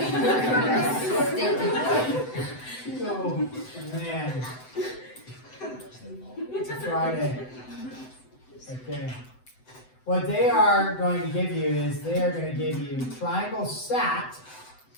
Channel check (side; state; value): right; late; 7.9 ms